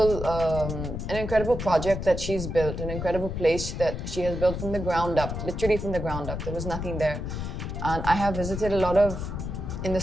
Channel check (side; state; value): left; noise; rumble, 5 dB below the sound